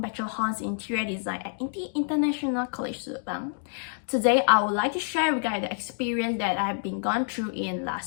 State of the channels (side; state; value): right; silent; 59 dB below the other